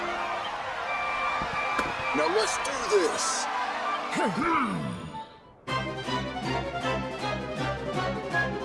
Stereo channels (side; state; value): both; identical; correlation 1.00